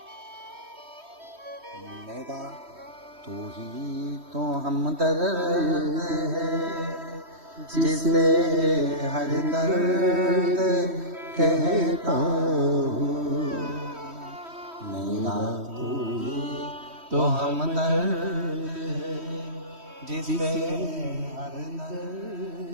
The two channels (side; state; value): left; late; 3.1 ms